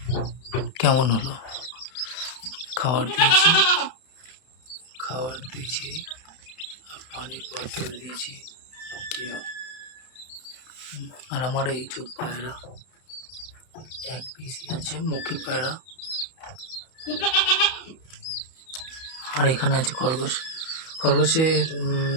কেমন হলো। খাবার দিয়েছি আর পানির বোতল দিয়েছি। আর আমার এই চোখ পায়রা এক পিসি আছে, মুখী পায়রা। আর এখানে আছে খরগোশের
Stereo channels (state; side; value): late; right; 31 ms